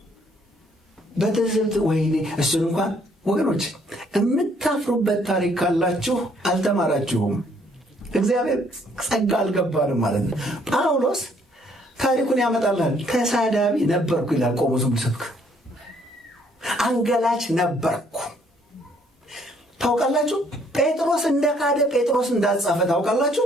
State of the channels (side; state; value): both; normal; correlation 0.65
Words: በትዝብት። ወይኔ እሱን እንኳን ወገኖች የምታፍሩበት ታሪክ ካላችሁ አልተማራችሁም። እግዚአብሔር ጸጋ አልገባንም ማለት ነው። ጳውሎስ ታሪኩን ያመጣላል። ተሳዳቢ ነበርኩ ይላል። ቆሞ ዝም ብሰብክ አንገላች ነበርኩ። ታውቃላችሁ ጴጥሮስ እንደካደ ጴጥሮስ እንዳልጻፈ